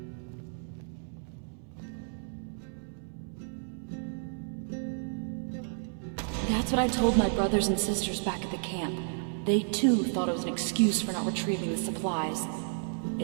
That's what I told my brothers and sisters back at the camp. They too thought it was an excuse for not retrieving the supplies.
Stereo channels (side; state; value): left; silent; 57 dB below the other